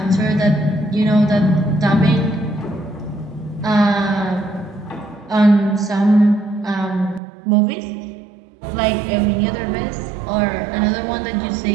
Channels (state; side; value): drops out; left; at 7.2 s